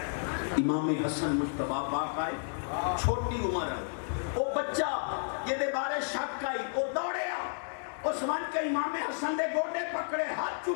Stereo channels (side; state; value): right; silent; digital silence